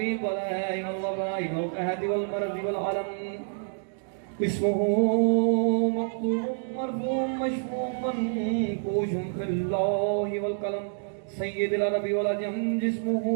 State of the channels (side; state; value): left; silent; digital silence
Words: البلاء والضراء والقهد والمرض والعلم اسمه مكتوب مرفوع مشفوع منقوش في الله والقلم سيد العرب والعجم جسمه